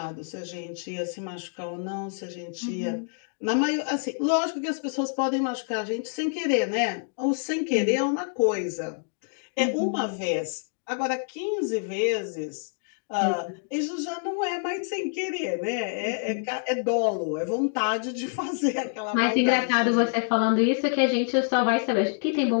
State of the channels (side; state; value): right; silent; digital silence